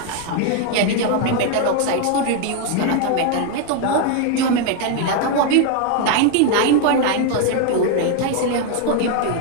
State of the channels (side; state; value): both; different; correlation 0.01